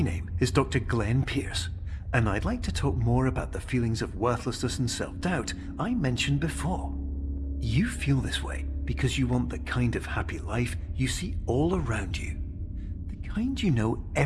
name is Dr. Glenn Pierce, and I'd like to talk more about the feelings of worthlessness and self-doubt I mentioned before. You feel this way because you want the kind of happy life you see all around you, the kind you know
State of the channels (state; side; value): identical; both; correlation 1.00